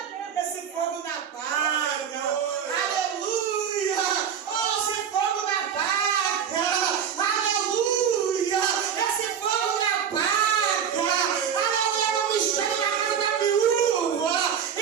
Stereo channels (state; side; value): quieter; left; 7.9 dB